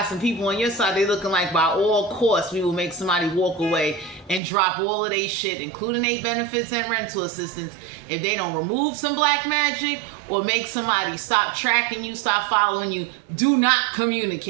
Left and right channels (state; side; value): drops out; left; at 4.4 s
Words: some people on your side. They looking like by all costs we will make somebody walk away and drop all of their shit, including their benefits and rental assistance, if they don't remove some black magic or make somebody stop tracking you, stop following you. Do not